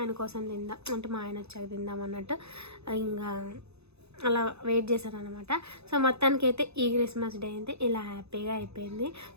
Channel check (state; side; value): late; left; 0.79 ms